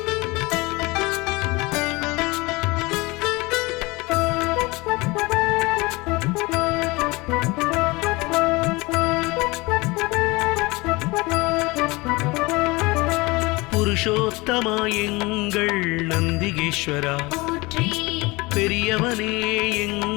புருஷோத்தமா எங்கள் நந்திகேஸ்வரா, போற்றி பெரியவனே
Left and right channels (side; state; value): right; quieter; 23.7 dB